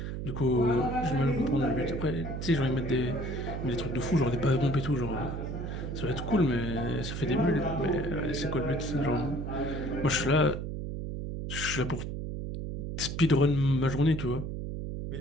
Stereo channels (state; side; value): noise; right; hum, 5 dB below the sound